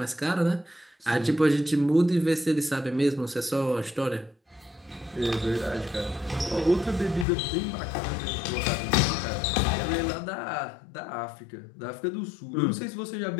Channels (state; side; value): drops out; right; at 7.2 s